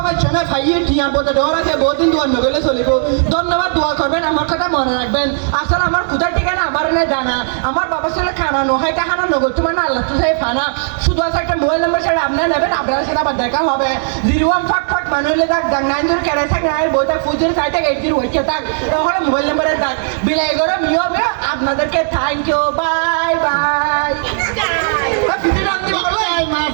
চেনে ভাইয়ে টিয়ার পথে ডর আছে বহুদিন দোয়ার নগলে চলিব ধন্যবাদ দোয়া করবেন আমার কথা মনে রাখবেন আসলে আমার কোথায় ঠিকানা আমার না জানা আমার বাবার সাথে খানা নয় টাকানা নগদ তোমার না আল্লাহ তো সাহেব ফানা শুধু আছে একটা মোবাইল নাম্বার সেটা আপনারা নেবেন আপনার সাথে আবার দেখা হবে 01 মানে হলে থাক ডাক 9 কেড়ে থাক না বইটা ফুজের সাইটে 80 ওইকে থাক তাহলে মোবাইল নাম্বারে থাক বিলাই করে নিয়মে আপনাদেরকে থ্যাংক ইউ বাই বাই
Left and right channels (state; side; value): silent; left; 68 dB below the other